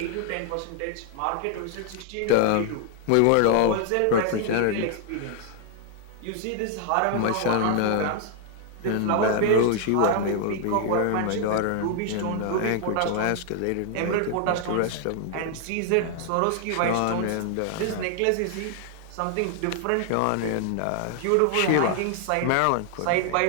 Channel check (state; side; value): different; both; correlation 0.00